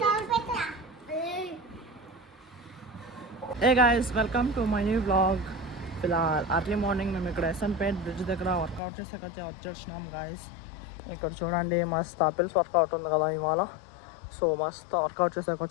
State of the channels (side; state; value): right; drops out; at 8.8 s